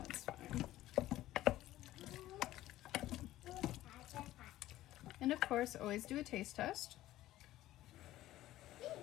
fine. And of course, always do a taste test.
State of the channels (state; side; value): quieter; right; 15.0 dB